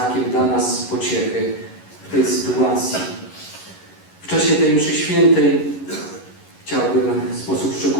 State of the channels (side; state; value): right; late; 11 ms